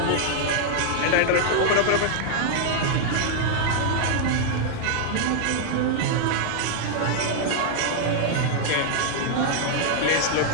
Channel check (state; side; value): different; both; correlation -0.01